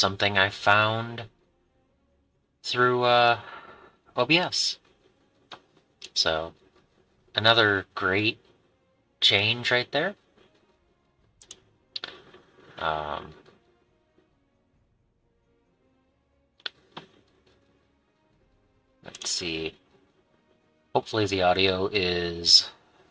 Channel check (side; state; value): both; identical; correlation 1.00